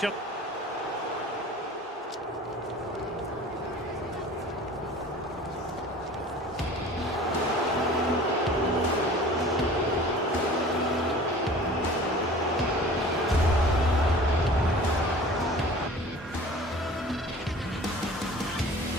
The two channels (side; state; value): both; normal; correlation 0.44